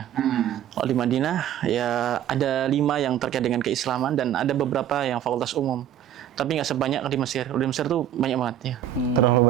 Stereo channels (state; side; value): quieter; left; 10.7 dB